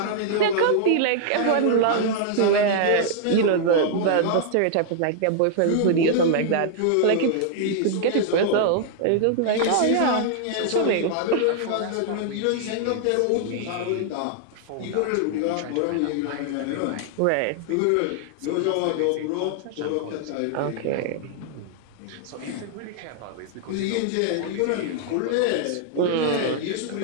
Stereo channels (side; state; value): both; different; correlation -0.01